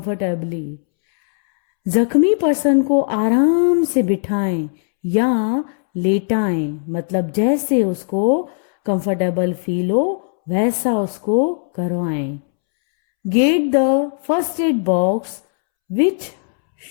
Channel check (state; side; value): silent; right; 67 dB below the other